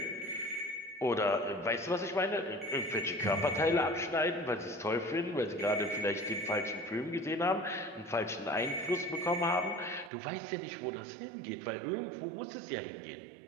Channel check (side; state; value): left; drops out; at 10.1 s